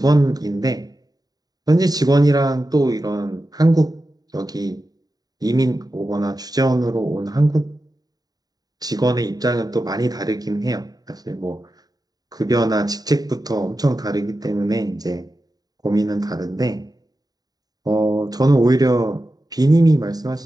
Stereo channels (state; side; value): late; left; 0.18 ms